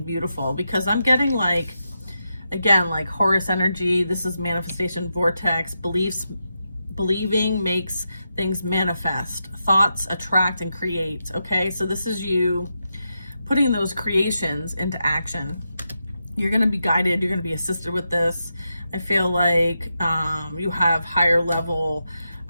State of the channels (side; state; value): both; inverted; correlation -0.87